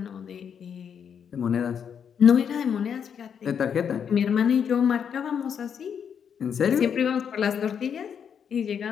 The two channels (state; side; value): quieter; right; 7.6 dB